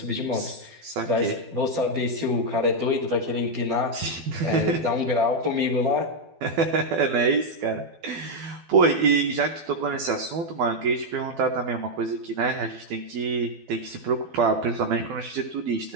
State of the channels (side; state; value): left; late; 12 ms